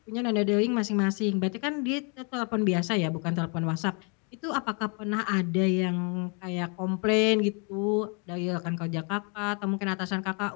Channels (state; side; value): quieter; right; 36.0 dB